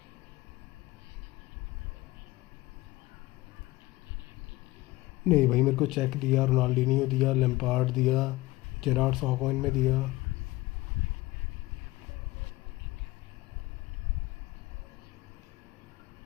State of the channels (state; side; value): quieter; right; 19.5 dB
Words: नहीं भाई मेरे को चेक दिया, रोनाल्डिनियो दिया, लैम्पार्ड दिया, जेरार्ड सॉकॉइन में दिया।